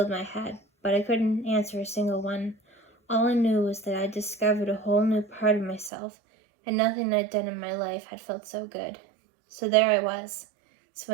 my head, but I couldn't answer a single one. All I knew was that I'd discovered a whole new part of myself, and nothing I'd done in my life had felt so good. So there I was,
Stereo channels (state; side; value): drops out; left; at 5.9 s